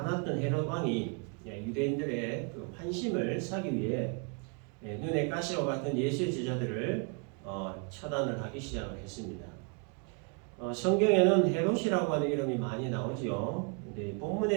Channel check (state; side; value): quieter; left; 35.1 dB